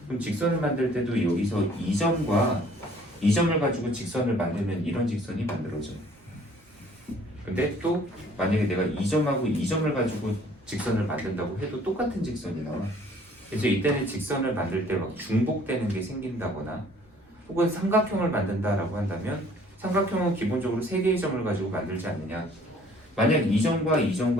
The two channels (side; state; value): both; normal; correlation 0.56